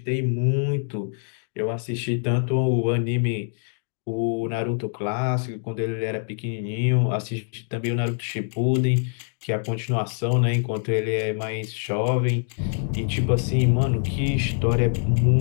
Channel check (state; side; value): silent; right; 62 dB below the other